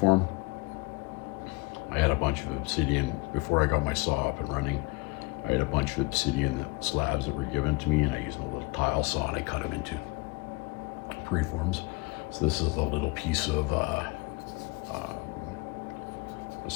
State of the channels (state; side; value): quieter; right; 25.6 dB